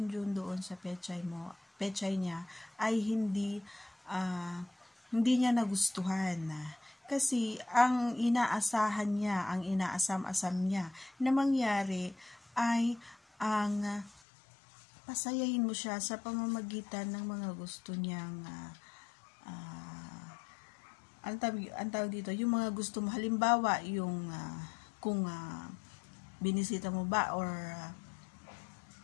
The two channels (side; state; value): right; drops out; at 14.2 s